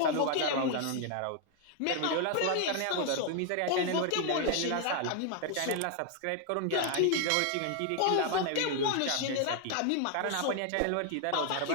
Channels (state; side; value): different; both; correlation 0.00